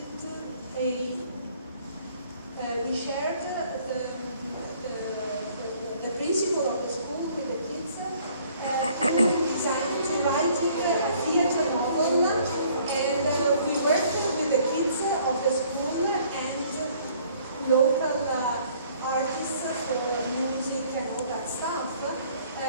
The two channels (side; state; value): both; inverted; correlation -0.59